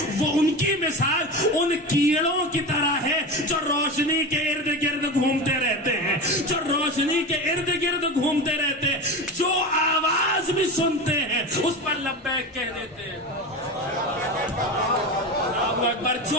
وہ ان کی مثال ان کیڑوں کی طرح ہے جو روشنی کے ارد گرد گھومتے رہتے ہیں جو روشنی کے ارد گرد گھومتے رہتے ہیں جو آواز بھی سنتے ہیں اس پر لبیک کہہ دیتے ہیں. اللہ اکبر.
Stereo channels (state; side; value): normal; both; correlation 0.25